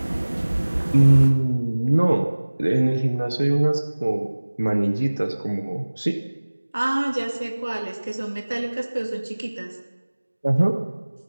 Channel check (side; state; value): both; inverted; correlation -1.00